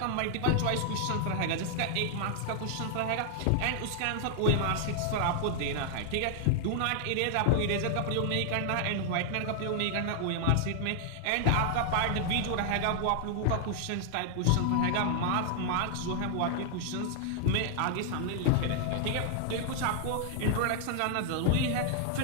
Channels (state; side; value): different; both; correlation -0.01